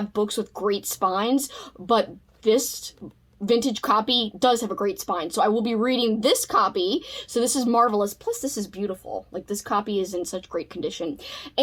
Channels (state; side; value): identical; both; correlation 1.00